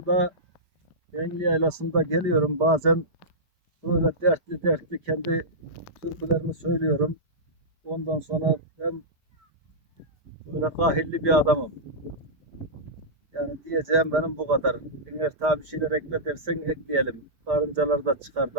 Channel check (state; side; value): late; left; 5.0 ms